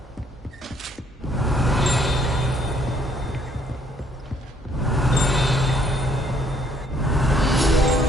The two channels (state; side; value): normal; both; correlation 0.66